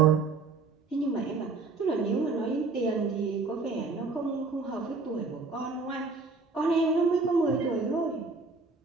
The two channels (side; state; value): left; quieter; 4.1 dB